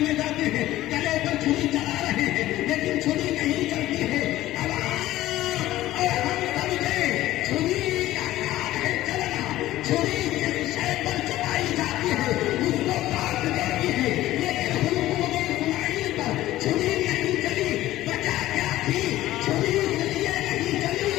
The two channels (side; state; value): right; quieter; 15.3 dB